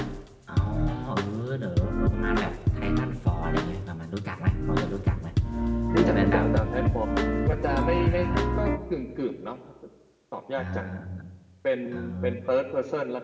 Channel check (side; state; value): both; identical; correlation 1.00